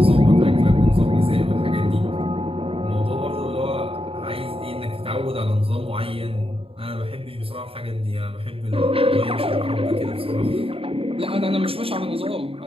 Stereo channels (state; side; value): late; left; 0.27 ms